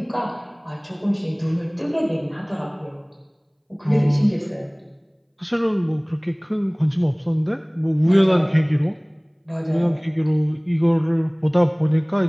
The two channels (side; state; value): both; identical; correlation 1.00